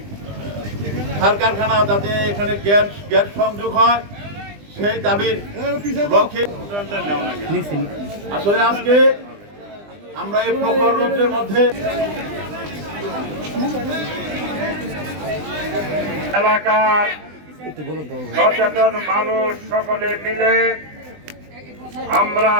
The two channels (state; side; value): late; left; 20 ms